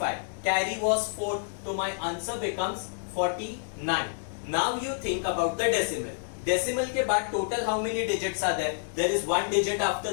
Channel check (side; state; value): right; silent; digital silence